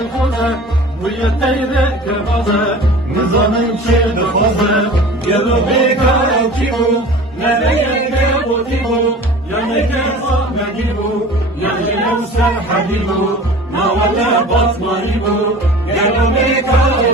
ويتيرك كفازه نظامن شد خوزه يلو بيكار كيبو نبيك بوتيبو يمك صاحب جيبو يلو سر حبيبو ما ولا بصمريبو يلو بيكار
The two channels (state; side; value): normal; both; correlation 0.40